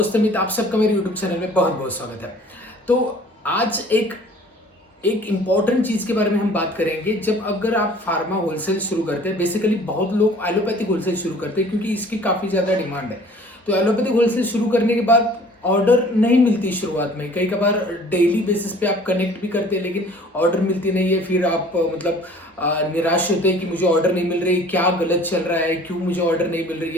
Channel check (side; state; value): both; normal; correlation 0.50